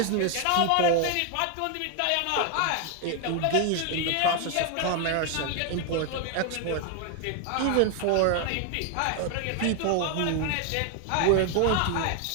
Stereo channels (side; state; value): both; different; correlation 0.01